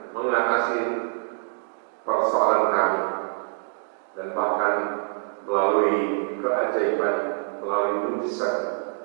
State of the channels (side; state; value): left; silent; 61 dB below the other